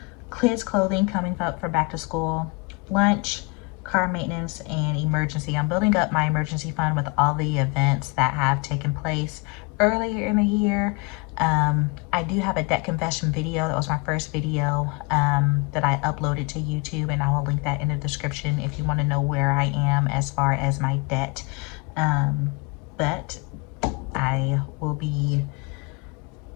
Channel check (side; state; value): right; quieter; 28.8 dB